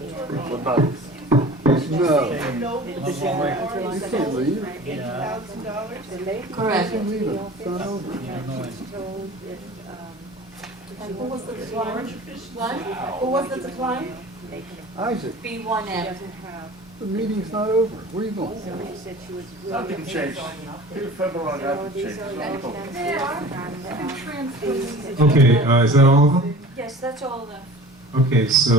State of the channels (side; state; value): both; normal; correlation 0.42